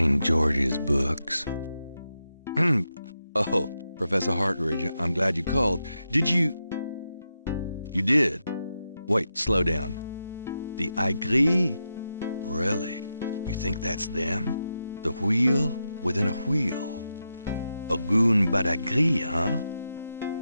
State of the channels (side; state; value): both; inverted; correlation -0.87